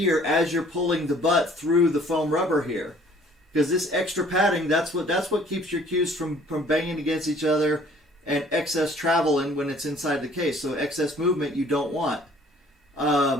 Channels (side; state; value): both; normal; correlation 0.56